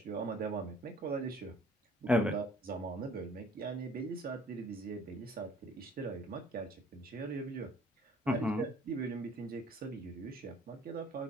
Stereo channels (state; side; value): normal; both; correlation 0.55